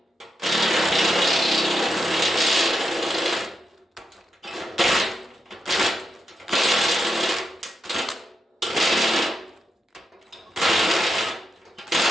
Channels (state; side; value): normal; both; correlation 0.85